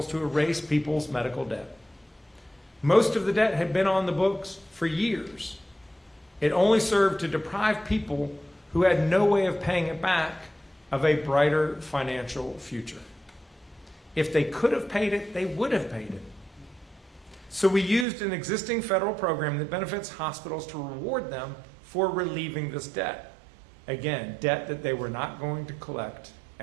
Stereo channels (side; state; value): left; drops out; at 18.1 s